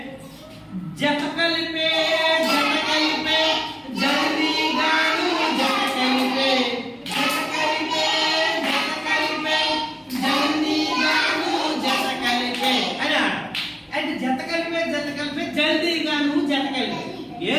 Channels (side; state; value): both; identical; correlation 1.00